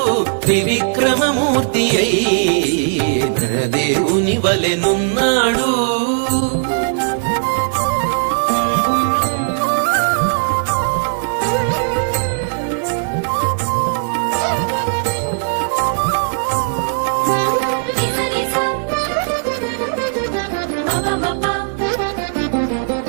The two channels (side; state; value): left; silent; digital silence